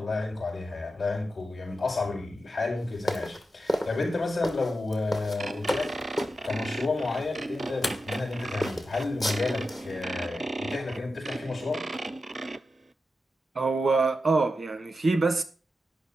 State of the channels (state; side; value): normal; both; correlation 0.89